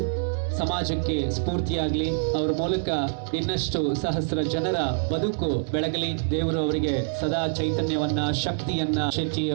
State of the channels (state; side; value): silent; left; 61 dB below the other